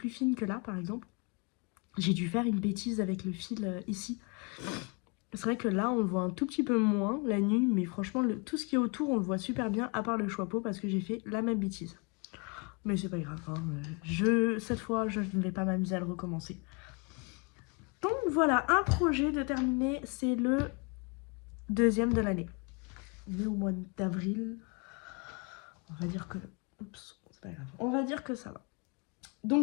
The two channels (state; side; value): quieter; right; 32.5 dB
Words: fines que là, par exemple. J'ai dû faire une bêtise avec le fil ici. C'est vrai que là, on le voit un tout petit peu moins la nuit, mais franchement, tout ce qui est autour, on le voit super bien, à part le chapeau, parce que j'ai fait la même bêtise. Mais c'est pas grave, hein. Cette fois, je ne vais pas m'amuser à le recommencer. Donc voilà, un projet de terminer, c'est le deuxième de l'année. On est au mois d'avril. On va dire que... Oups, c'est pas grave. On va dire que ça va.